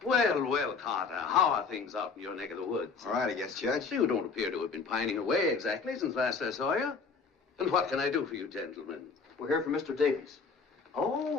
Well, well, Carter, how are things out in your neck of the woods? All right, I guess, Judge. You don't appear to have been pining away exactly since last I saw you. And what can I do for you, gentlemen? We're here for Mr. Davies.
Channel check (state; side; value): quieter; right; 4.9 dB